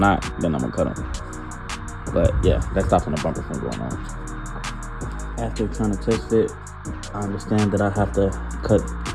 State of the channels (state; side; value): identical; both; correlation 1.00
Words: then I'm gonna cut them. But yeah, that stops the bumper from going on. After trying to test fit, I understand that I have to cut